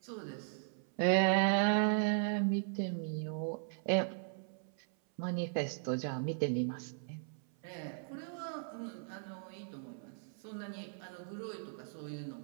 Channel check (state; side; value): silent; left; 53 dB below the other